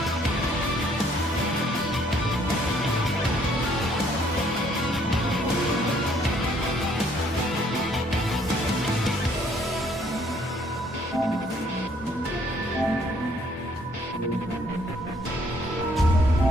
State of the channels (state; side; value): normal; both; correlation 0.64